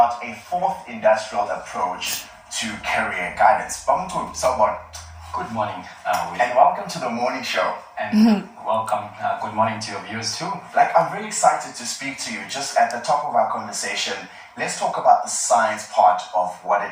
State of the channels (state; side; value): identical; both; correlation 1.00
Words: a fourth industrial approach to career guidance. Good morning, and welcome to the morning show. And welcome, good morning to your viewers too. I'm really excited to speak to you. Just at the top of our conversation, let's talk about the science part of what